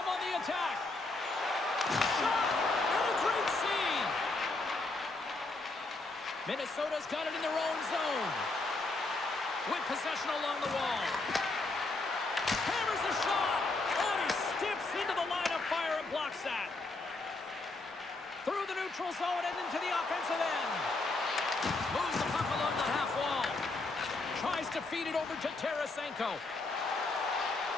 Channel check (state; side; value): quieter; right; 3.2 dB